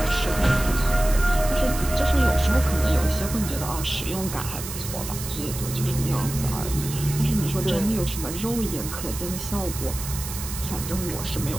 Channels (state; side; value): noise; right; hiss, 9 dB below the sound